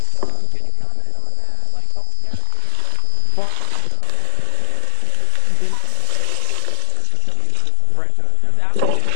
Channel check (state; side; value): different; both; correlation 0.00